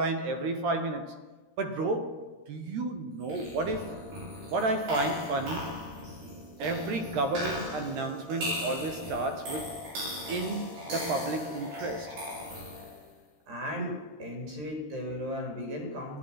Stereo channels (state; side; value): late; left; 13 ms